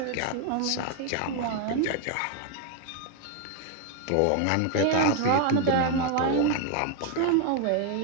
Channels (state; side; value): different; both; correlation 0.01